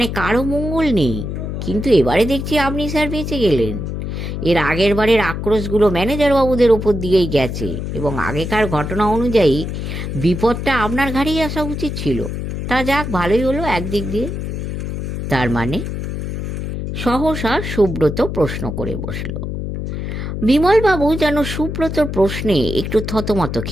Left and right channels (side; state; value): left; noise; hum, 4 dB below the sound